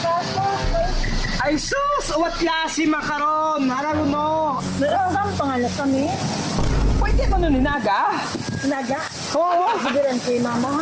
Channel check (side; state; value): both; identical; correlation 1.00